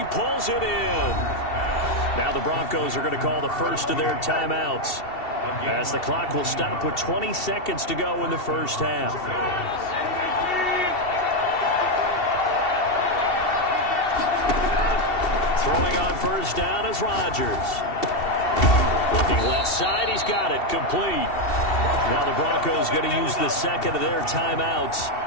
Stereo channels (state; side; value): late; right; 2.7 ms